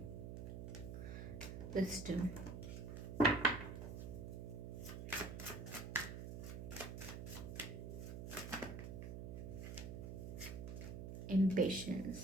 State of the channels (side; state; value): right; noise; hum, 7 dB below the sound